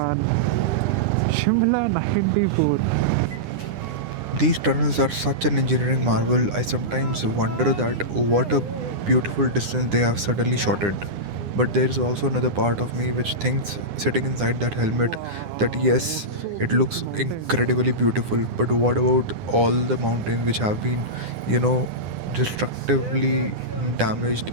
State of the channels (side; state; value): left; late; 9.8 ms